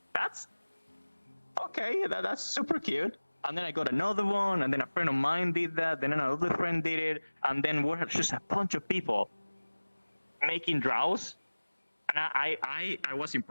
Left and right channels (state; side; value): inverted; both; correlation -1.00